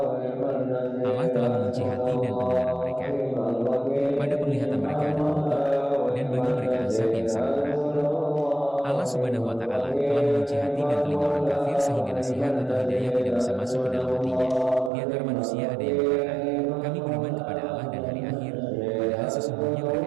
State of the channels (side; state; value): left; drops out; at 14.9 s